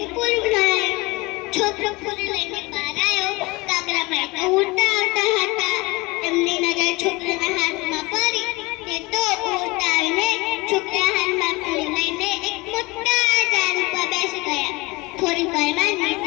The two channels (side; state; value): right; quieter; 23.7 dB